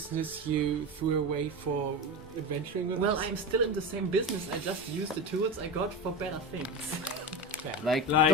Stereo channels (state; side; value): normal; both; correlation 0.22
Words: you threw away for adventuring with Well, us? I'm still in the same business. I just use the tools I got for better things. Like, Like,